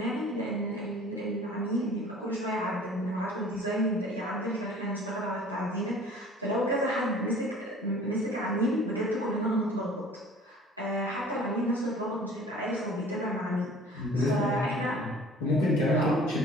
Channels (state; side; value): normal; both; correlation 0.48